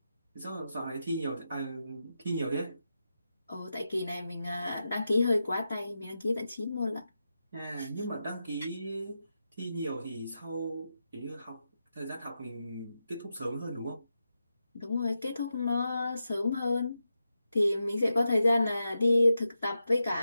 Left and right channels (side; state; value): both; inverted; correlation -0.88